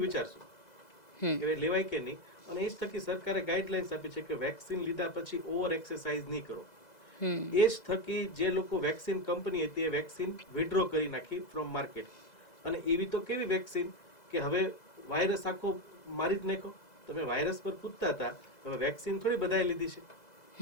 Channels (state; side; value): late; right; 2.0 ms